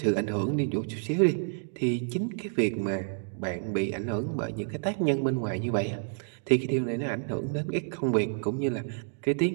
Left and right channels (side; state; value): left; silent; digital silence